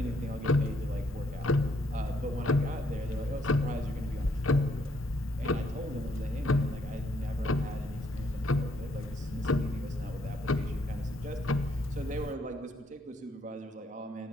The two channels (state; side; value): normal; both; correlation 0.70